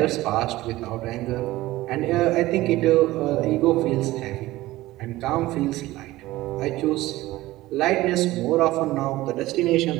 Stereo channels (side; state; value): left; quieter; 17.5 dB